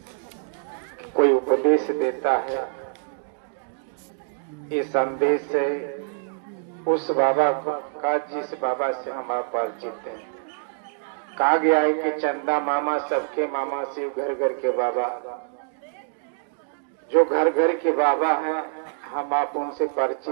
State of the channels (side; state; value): left; silent; digital silence